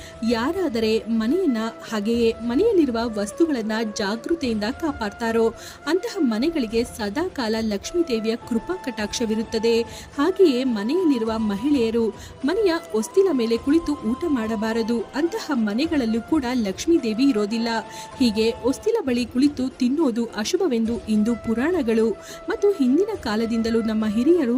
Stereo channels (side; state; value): both; identical; correlation 1.00